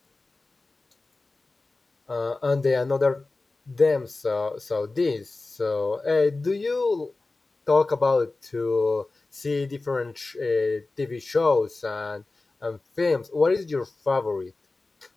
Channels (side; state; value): right; quieter; 3.4 dB